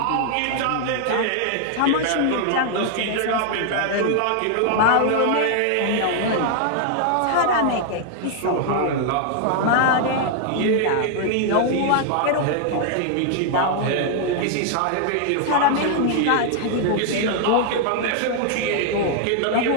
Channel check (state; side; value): different; both; correlation 0.00